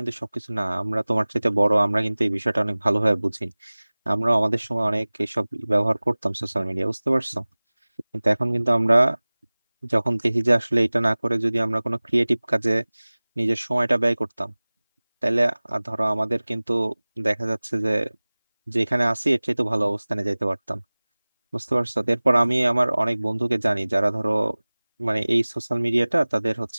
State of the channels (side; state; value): both; inverted; correlation -1.00